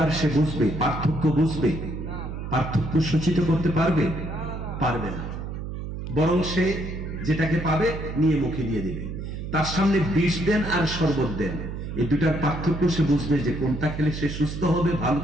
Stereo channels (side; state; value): right; noise; hum, 7 dB below the sound